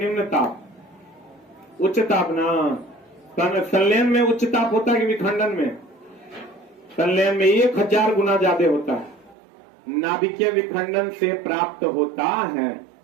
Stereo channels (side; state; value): left; drops out; at 9.3 s